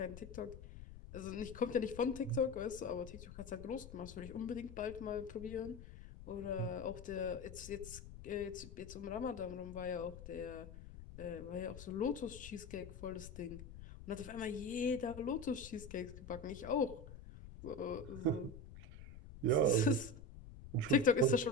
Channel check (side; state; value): left; noise; rumble, 13 dB below the sound